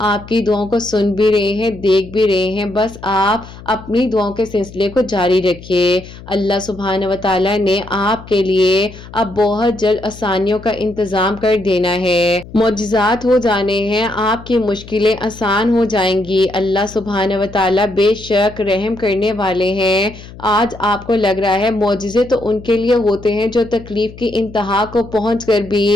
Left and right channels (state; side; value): noise; left; hum, 17 dB below the sound